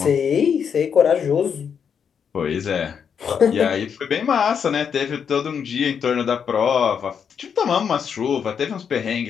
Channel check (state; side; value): quieter; right; 7.2 dB